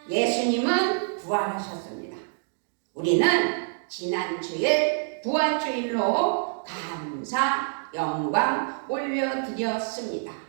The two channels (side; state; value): left; silent; digital silence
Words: 예수님은 부활하셨습니다. 우리는 지난 주일 부활주일로 감사, 영광 올려드렸습니다.